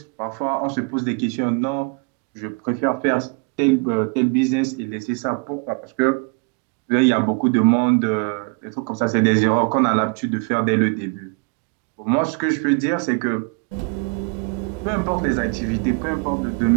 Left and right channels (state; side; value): quieter; left; 33.2 dB